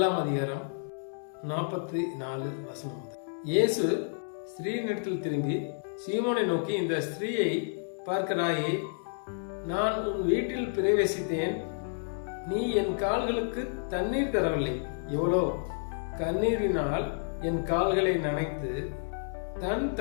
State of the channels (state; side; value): silent; right; 56 dB below the other